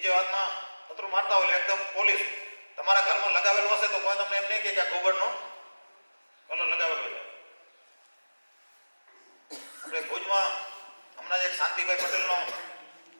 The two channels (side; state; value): both; inverted; correlation -1.00